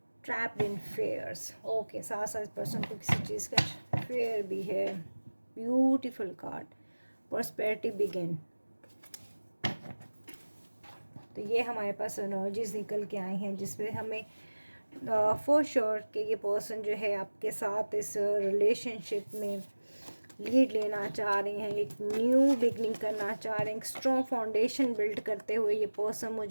trapped in fairs. Okay, साथ साथ पर्सन को किसी चीज़ का फेयर भी है। Beautiful card, prosperity begin. तो ये हमारे पास एनर्जीज निकल के आई हैं, जिसमें हमें फॉर श्योर कि ये पर्सन जो है आपके साथ इस रिलेशनशिप में लीड लेना चाह रहे हैं, एक न्यू बिगनिंग करना चाह रहे हैं, एक स्ट्रॉन्ग फाउंडेशन बिल्ड करते हुए ये पर्सन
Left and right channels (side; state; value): both; inverted; correlation -1.00